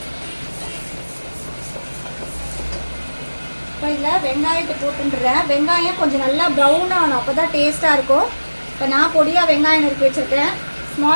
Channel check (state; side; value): inverted; both; correlation -1.00